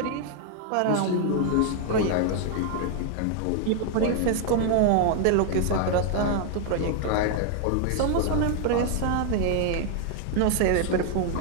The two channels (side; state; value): both; different; correlation 0.00